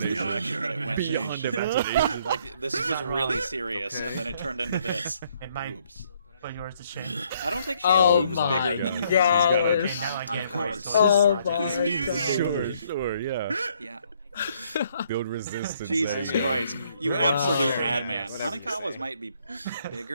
the Beyond direction that it went Beyond in. imagination. Like, this was really serious, Okay. and then it turned into this. It might Boobs. put yours to shame. I don't think she Oh has boobs my bigger than you God. Okay, now I get it. course. So Oh it's- my Sure, sure, yeah. Yeah. Build resistance. Jesus there. Christ. You Wow. absolute madman. Whatever you Hanakawa's say. might be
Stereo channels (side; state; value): both; inverted; correlation -0.68